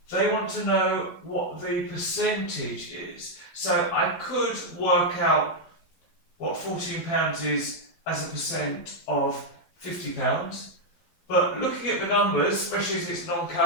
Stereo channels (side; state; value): right; late; 12 ms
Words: They want to know what the percentage is. So I could work out what £14 is as a percent of £50, but looking at the numbers, especially as it's